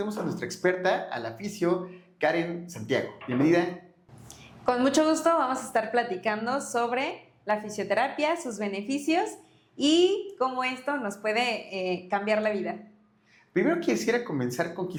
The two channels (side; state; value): both; identical; correlation 1.00